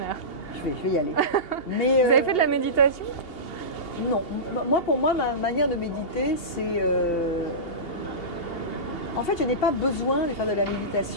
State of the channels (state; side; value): late; right; 2.8 ms